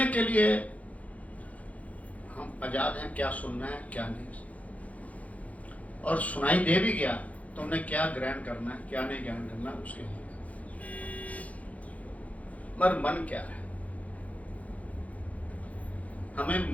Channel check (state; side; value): late; right; 0.069 ms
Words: के लिए हम आजाद हैं, क्या सुनना है क्या नहीं, और सुनाई दे भी गया तो हमने क्या ग्रहण करना है क्या नहीं ग्रहण करना, उसके लिए। मगर मन क्या है, हमें